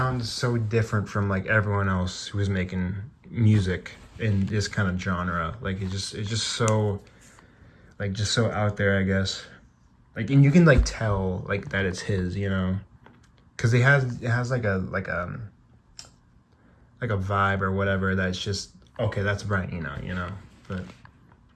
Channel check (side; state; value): both; identical; correlation 1.00